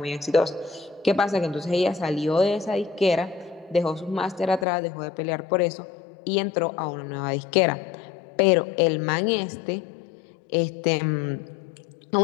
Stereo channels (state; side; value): drops out; right; at 4.7 s